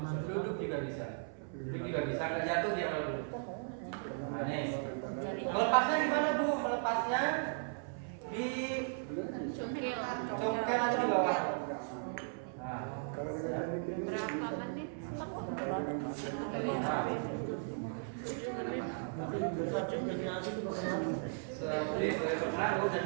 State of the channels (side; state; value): left; silent; 53 dB below the other